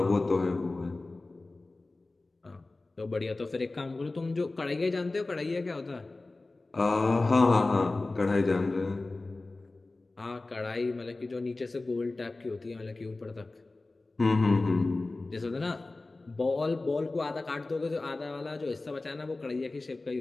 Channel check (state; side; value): quieter; right; 3.2 dB